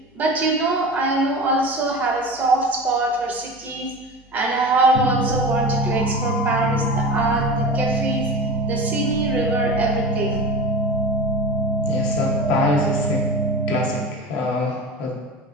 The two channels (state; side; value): normal; both; correlation 0.31